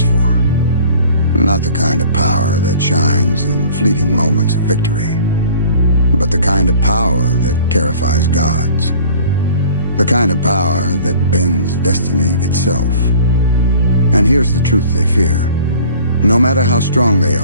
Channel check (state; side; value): inverted; both; correlation -0.48